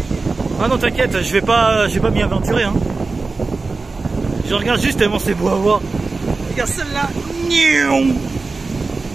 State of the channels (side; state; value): left; quieter; 3.9 dB